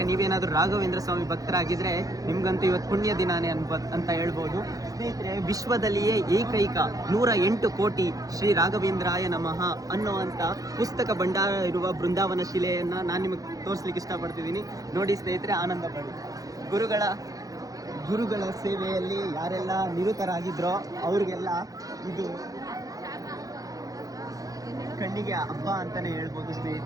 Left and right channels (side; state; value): left; late; 0.17 ms